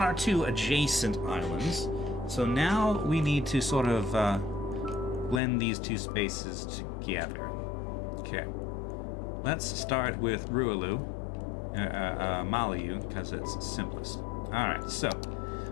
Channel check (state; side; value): drops out; right; at 5.4 s